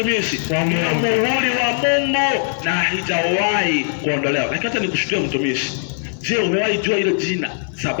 Ndio muhuri wa Mungu na haijawahi kuondolewa. Lakini hata nikushuhudia mtumishi. Je, umewahi jua hilo jina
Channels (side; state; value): right; silent; digital silence